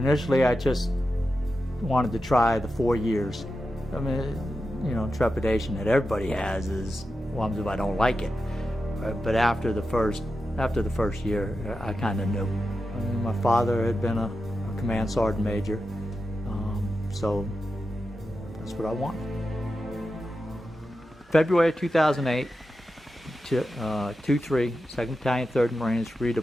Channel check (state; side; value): normal; both; correlation 0.90